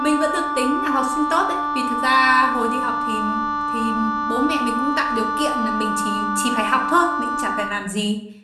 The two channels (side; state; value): both; identical; correlation 1.00